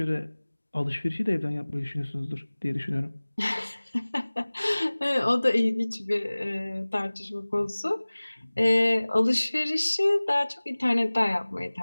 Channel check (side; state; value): both; inverted; correlation -1.00